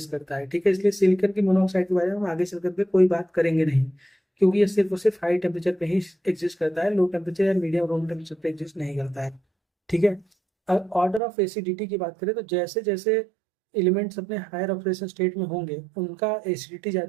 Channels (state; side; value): drops out; left; at 11.2 s